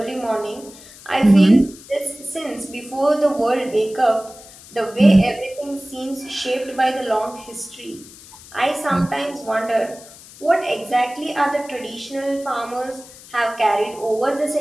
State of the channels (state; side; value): noise; left; hiss, 20 dB below the sound